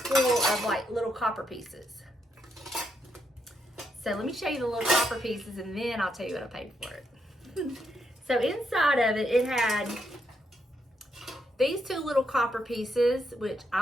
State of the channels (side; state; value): both; normal; correlation 0.79